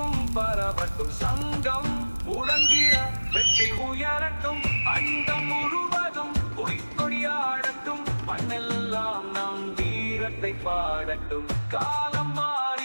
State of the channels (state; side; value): inverted; both; correlation -1.00